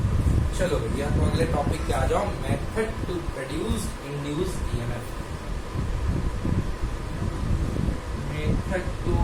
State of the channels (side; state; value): both; identical; correlation 1.00